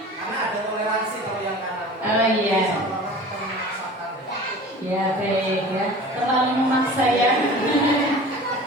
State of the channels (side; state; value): both; normal; correlation 0.40